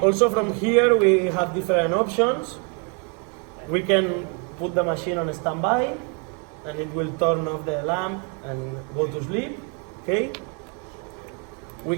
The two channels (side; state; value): left; quieter; 37.2 dB